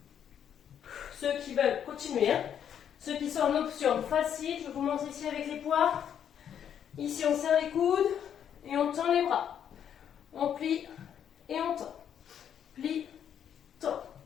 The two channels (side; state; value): right; quieter; 9.0 dB